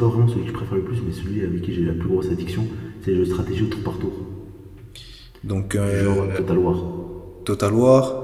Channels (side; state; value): both; identical; correlation 1.00